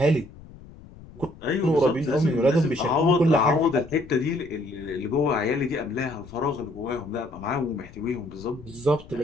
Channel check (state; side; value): noise; left; rumble, 19 dB below the sound